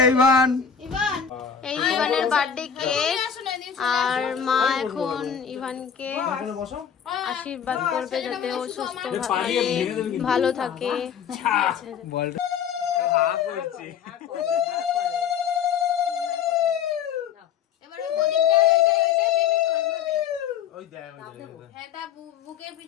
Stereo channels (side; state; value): right; quieter; 7.7 dB